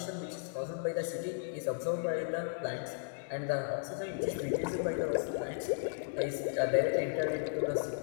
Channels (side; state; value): right; silent; 54 dB below the other